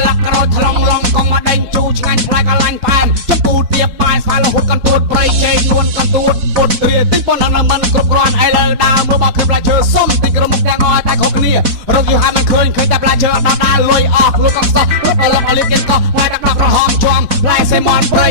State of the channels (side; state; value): left; late; 4.1 ms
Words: ឡាក្រូចថ្លងឡងកងមកដេញជូឆ្ងាញ់ផ្លែកលាញ់ផែមចំពូទៀបបាយស្វាយរហូតកន្ទួតប្រៃជេកនួនកន្ទួតពុតទ្រាទិញប៉ុណ្ណឹងមិនគ្រប់គ្រាន់ឥឡូវដើរមើលមកគឺផ្លែឈើសុំទិញក្រុមមុខទាំងអស់តែគ្រប់គ្នារកយូរហើយមិនឃើញតែផ្លែឈើដល់ដើរលុយអស់លុយកកសោះលុបអលកអលីកេនកោវាយដាក់ក្រហមជាប់ផ្លែសេមនព្រៃ